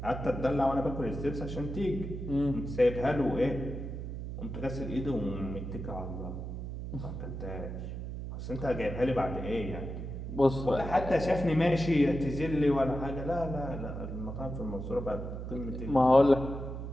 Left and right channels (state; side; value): noise; right; hum, 7 dB below the sound